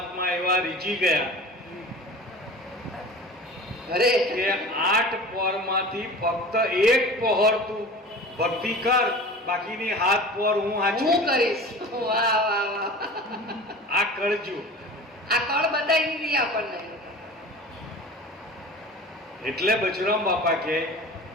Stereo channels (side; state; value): both; normal; correlation 0.38